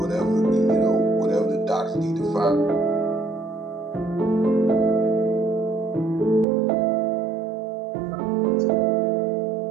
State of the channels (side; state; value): left; drops out; at 6.5 s